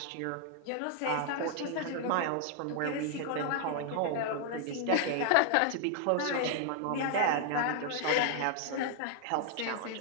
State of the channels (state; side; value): different; both; correlation 0.00